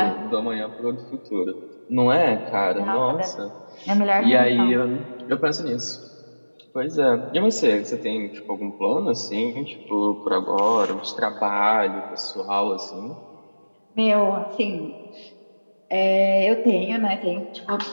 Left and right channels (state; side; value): inverted; both; correlation -1.00